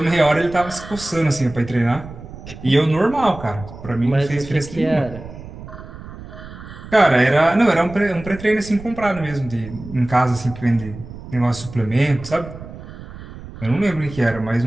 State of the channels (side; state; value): right; noise; rumble, 14 dB below the sound